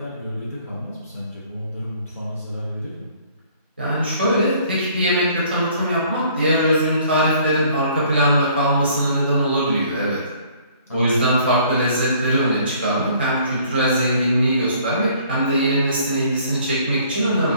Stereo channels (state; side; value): inverted; both; correlation -0.58